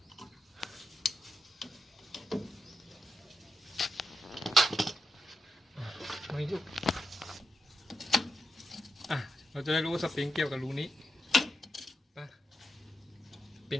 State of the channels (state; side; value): normal; both; correlation 0.86